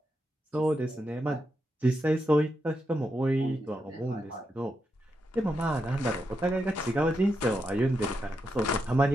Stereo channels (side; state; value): both; normal; correlation 0.85